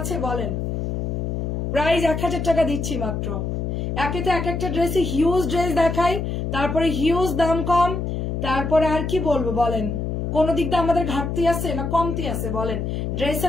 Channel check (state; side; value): noise; left; hum, 2 dB below the sound